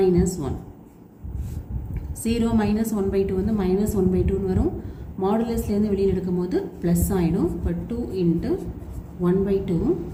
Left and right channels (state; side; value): identical; both; correlation 1.00